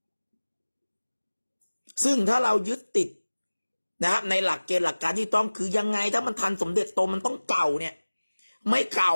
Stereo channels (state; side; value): inverted; both; correlation -1.00